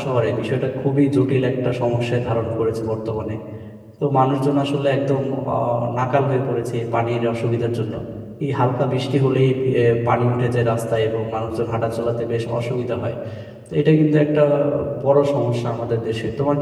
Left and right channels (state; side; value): identical; both; correlation 1.00